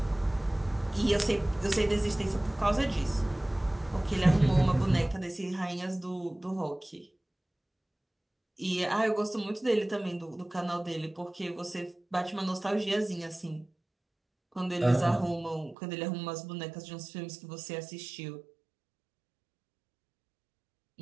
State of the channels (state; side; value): drops out; left; at 15.8 s